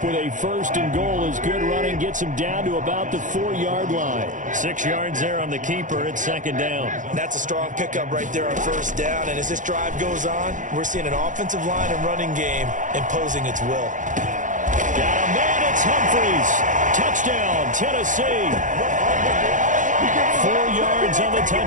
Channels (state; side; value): late; left; 0.37 ms